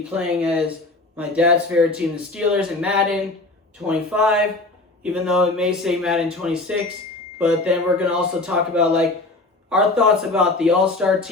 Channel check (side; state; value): right; quieter; 3.0 dB